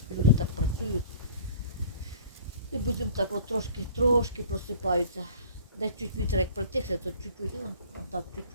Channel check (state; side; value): inverted; both; correlation -0.46